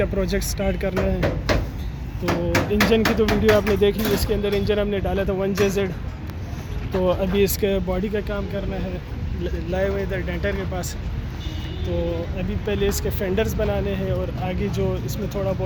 प्रोजेक्ट स्टार्ट करना है। तो इंजन की तो वीडियो आपने देख ली, इसके अंदर इंजन हमने डाला था 1JZ। तो अभी इसके बॉडी का काम करना है, लाए हुए इधर डेंटर के पास। तो अभी पहले इसके फेंडर्स बनाने हैं और आगे जो इसमें थोड़ा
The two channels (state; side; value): identical; both; correlation 1.00